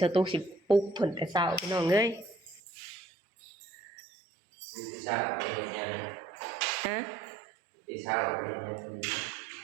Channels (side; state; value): left; drops out; at 2.6 s